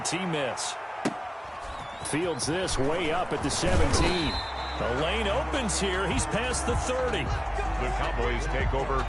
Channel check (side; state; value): both; identical; correlation 1.00